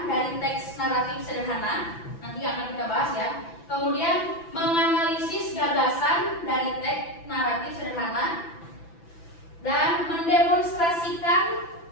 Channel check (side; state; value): right; late; 5.9 ms